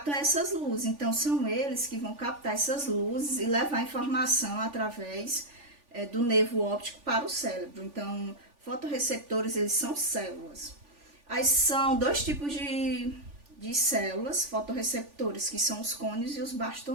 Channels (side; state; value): left; late; 3.5 ms